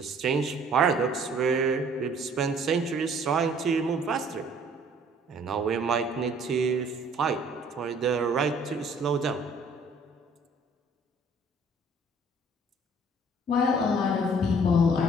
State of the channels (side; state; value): both; normal; correlation 0.56